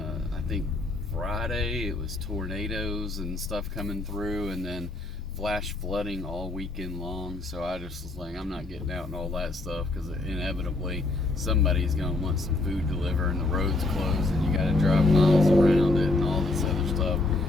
I think Friday it was tornadoes and stuff coming through, and then flash flooding all weekend long. So I just was like, I'm not getting out and all that stuff, because inevitably somebody's going to want some food delivered, and the road's closed, and you got to drive miles around it and all this other stuff.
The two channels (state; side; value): quieter; right; 3.0 dB